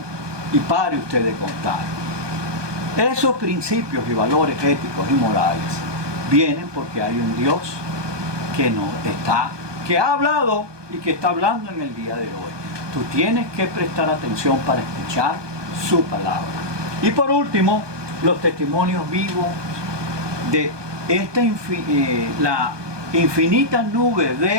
Y pare usted de contar. Esos principios y valores éticos y morales vienen porque hay un Dios que ha hablado y que está hablando en el día de hoy. Tú tienes que prestar atención para escuchar su palabra. Y por último, los testimonios vivos de la infinita nube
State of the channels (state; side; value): late; left; 1.2 ms